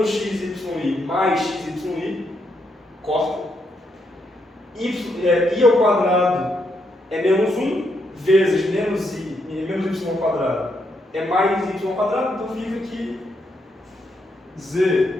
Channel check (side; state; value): both; normal; correlation 0.78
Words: xy mais xy corta. I ao quadrado é menos 1 vezes menos y ao quadrado é mais y ao quadrado, então fica que